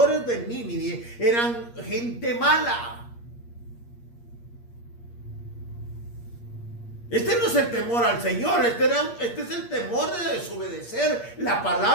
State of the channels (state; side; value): late; right; 8.5 ms